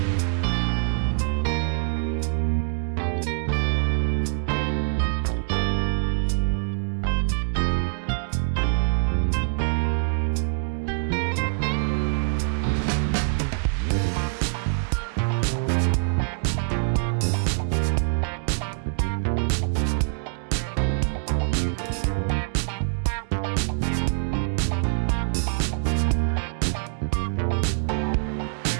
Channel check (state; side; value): silent; left; digital silence